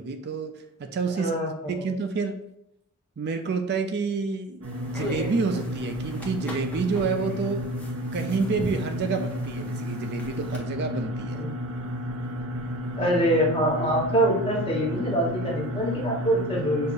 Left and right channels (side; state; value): both; normal; correlation 0.38